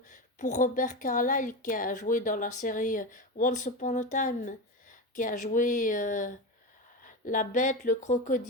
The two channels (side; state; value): both; normal; correlation 0.20